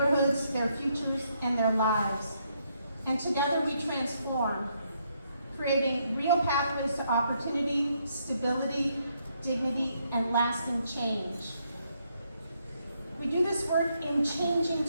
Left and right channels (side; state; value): both; inverted; correlation -0.75